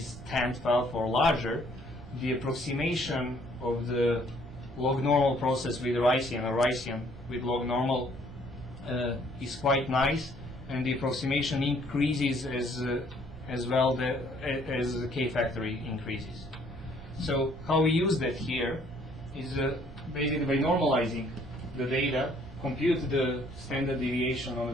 10^12 or larger, the approximation of the log normal process with Ricean or Ricean with log normal is quite nice, and the approximation increases as well as the k-factor increases. So how we use that here is basically by normalizing the data, compute the standard deviation on a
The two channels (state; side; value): noise; right; rumble, 17 dB below the sound